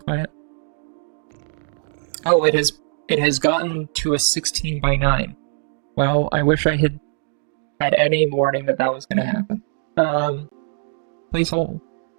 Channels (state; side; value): silent; left; digital silence